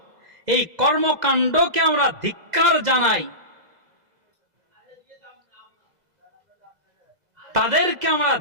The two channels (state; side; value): late; left; 2.0 ms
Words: এই কর্মকাণ্ডকে আমরা ধিক্কার জানাই। তাদেরকে আমরা